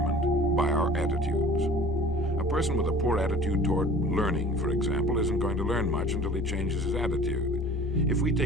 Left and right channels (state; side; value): normal; both; correlation 0.46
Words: by our attitudes. A person with a poor attitude toward learning, for example, isn't going to learn much until he changes his attitude. If we